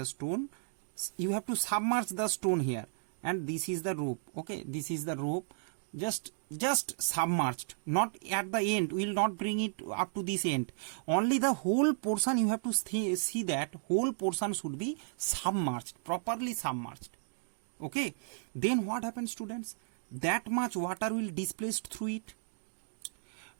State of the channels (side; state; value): left; silent; digital silence